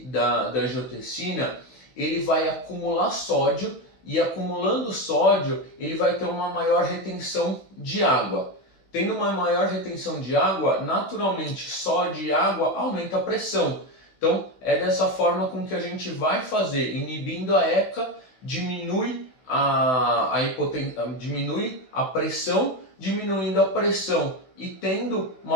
da angiotensina, ele vai acumular sódio, e acumulando sódio, ele vai ter uma maior retenção de água. Tendo uma maior retenção de água, naturalmente sódio e água aumenta a pressão. Então é dessa forma com que a gente vai fazer, inibindo a ECA, diminui diminui a pressão, diminuindo a pressão e tendo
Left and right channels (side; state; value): right; late; 16 ms